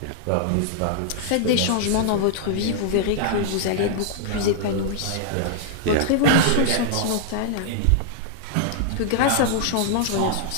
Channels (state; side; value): different; both; correlation -0.01